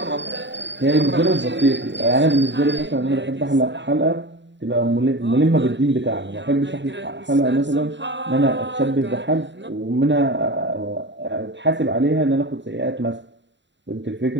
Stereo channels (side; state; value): left; late; 0.52 ms